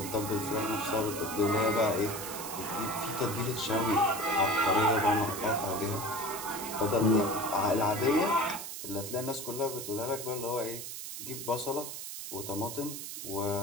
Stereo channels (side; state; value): right; noise; hiss, 8 dB below the sound